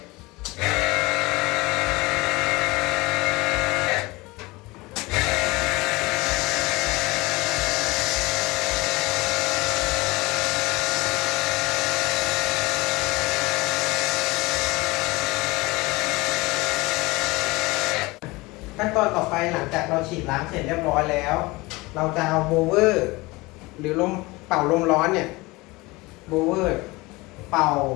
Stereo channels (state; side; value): quieter; right; 22.6 dB